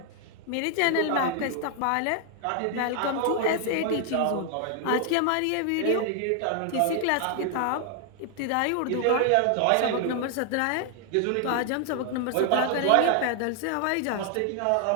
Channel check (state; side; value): different; both; correlation 0.00